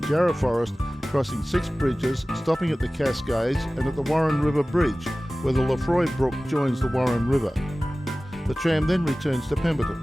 Jarrah forest, crossing 6 bridges, stopping at the Cascades and at the Warren River Bridge, where the Lefroy Brook joins the Warren River. The tram then returns to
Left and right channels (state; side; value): normal; both; correlation 0.97